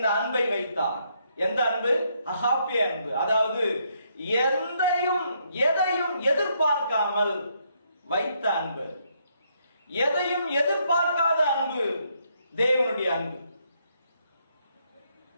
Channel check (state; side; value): inverted; both; correlation -0.74